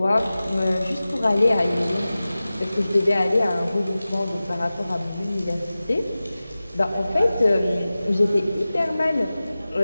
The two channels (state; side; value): inverted; both; correlation -0.96